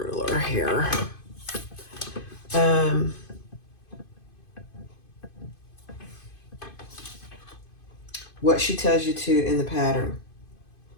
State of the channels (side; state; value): right; late; 2.5 ms